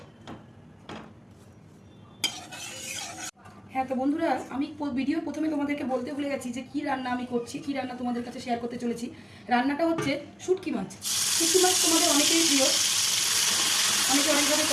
হ্যাঁ, তো বন্ধুরা, আমি ভিডিও প্রথমে তোমাদেরকে বলতে ভুলে গেছি যে কী রান্না আমি করছি, কী রান্না তোমাদের কাছে শেয়ার করতে চলেছি। রান্নাটা হচ্ছে শুটকি মাছ। শুটকি মাছ তোমাদের অনেকেই প্রিয়, অনেকে অনেকভাবে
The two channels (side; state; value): both; identical; correlation 1.00